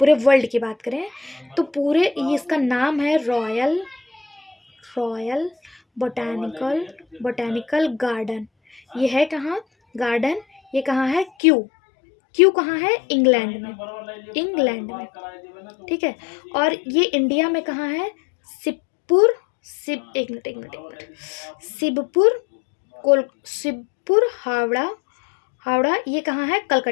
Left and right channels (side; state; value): right; drops out; at 11.3 s